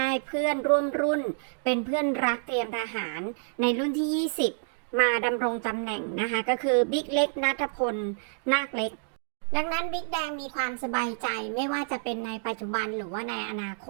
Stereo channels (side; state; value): left; silent; digital silence